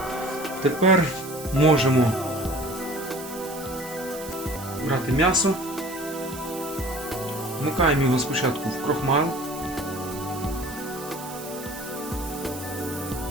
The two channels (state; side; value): noise; right; hiss, 14 dB below the sound